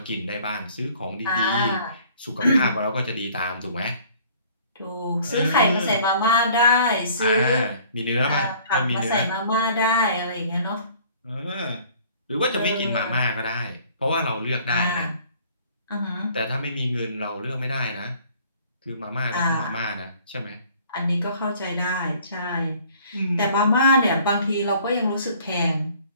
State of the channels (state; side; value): inverted; both; correlation -0.54